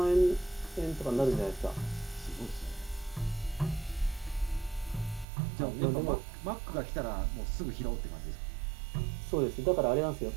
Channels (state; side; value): drops out; left; at 5.2 s